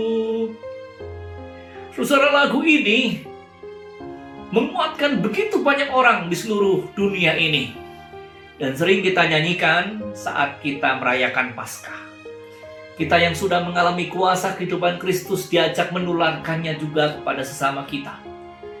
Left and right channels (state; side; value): identical; both; correlation 1.00